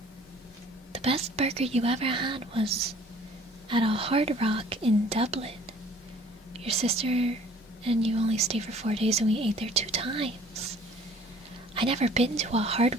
The best burger you ever had was at a Hard Rock in Dublin. Your sister and you only stayed for 4 days and we ate there 2 times. I never been to a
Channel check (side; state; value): both; normal; correlation 0.53